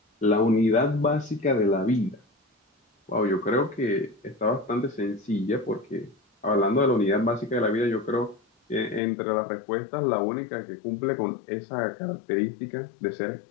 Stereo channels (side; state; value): right; drops out; at 9.0 s